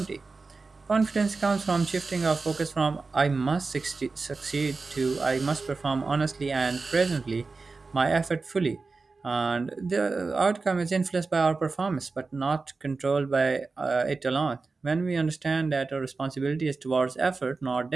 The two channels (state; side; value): quieter; left; 4.0 dB